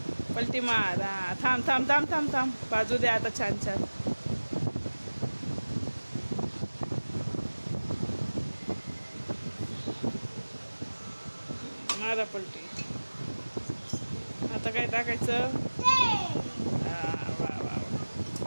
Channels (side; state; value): both; inverted; correlation -1.00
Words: हा, थांब. बाजू दे आता. छान. मारा पलटी. आता काय टाकायचं? वा.